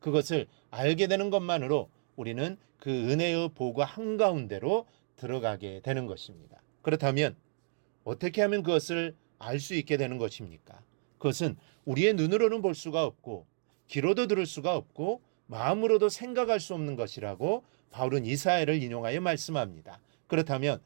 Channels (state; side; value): silent; left; digital silence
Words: 알게 되는 것만으로 우리는 그 은혜의 보고 한가운데로 들어가게 되는 것입니다. 그렇다면 어떻게 하면 그것을 알 수 있게 되는 것입니까? 그것은 우리의 눈으로는 볼 수가 없고 귀로도 들을 수가 없고 마음으로도 생각할 수 없는 것이라고 바울은 이사야를 인용하여 말씀합니다. 그렇다면